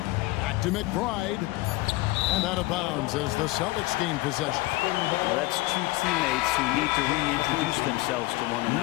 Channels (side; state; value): right; quieter; 20.3 dB